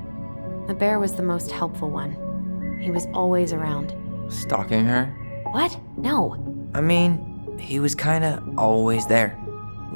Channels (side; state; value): both; inverted; correlation -1.00